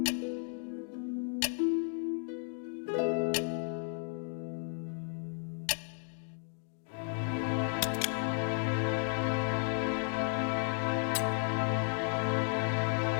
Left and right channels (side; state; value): right; silent; 55 dB below the other